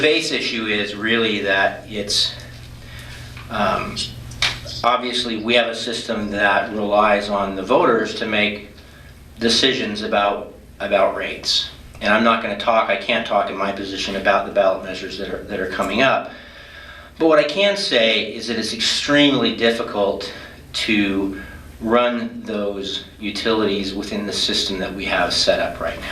base issue is really that it's, obviously we have a system that relies on the voters to make decisions about rates. And I'm not going to talk, I can't talk in my position about the ballot measures that are coming up. But what I can say is that it's extremely difficult to run those utilities within the system that we have set up right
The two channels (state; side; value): identical; both; correlation 1.00